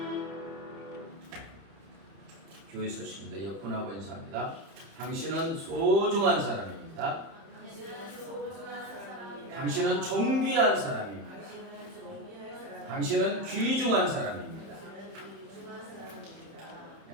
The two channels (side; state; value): left; late; 31 ms